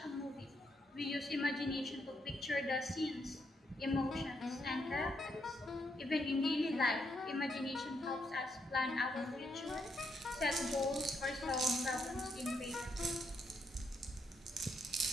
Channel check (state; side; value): normal; both; correlation 0.77